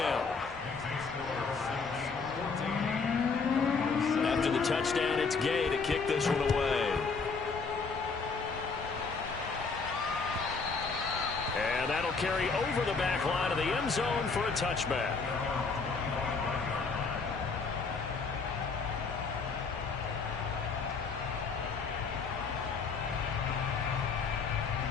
After the touchdown, it's Gay to kick this one away. And that'll carry over the back line of the end zone for a touchback.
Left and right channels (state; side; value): quieter; right; 4.7 dB